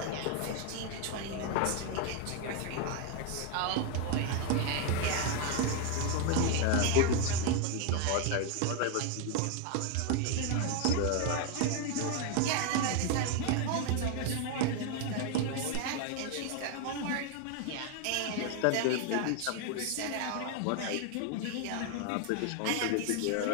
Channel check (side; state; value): both; different; correlation 0.01